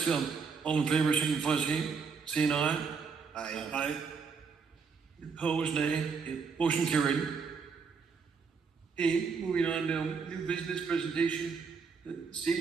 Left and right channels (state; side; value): quieter; left; 5.4 dB